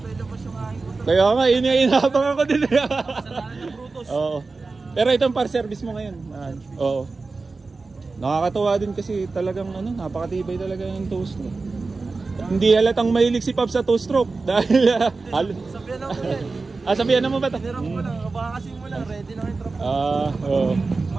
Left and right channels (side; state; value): left; quieter; 3.9 dB